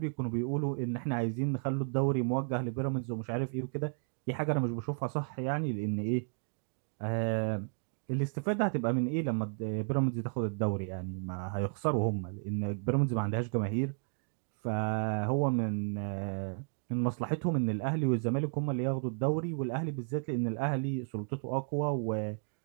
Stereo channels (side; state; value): left; silent; 56 dB below the other